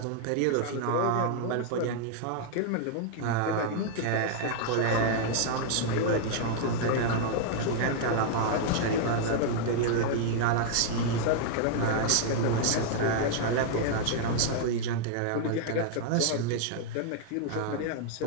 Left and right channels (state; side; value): different; both; correlation -0.01